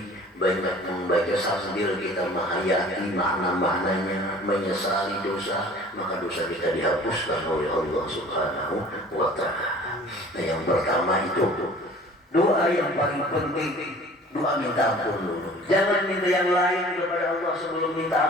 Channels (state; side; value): normal; both; correlation 0.47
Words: banyak membaca sambil kita menghayati makna-maknanya, menyesali dosa, maka dosa kita dihapuskan oleh Allah Subhanahu wa ta'ala. Nah, yang pertama itu doa yang paling penting, doa minta ampun dulu. Jangan minta yang lain kepada Allah sebelum minta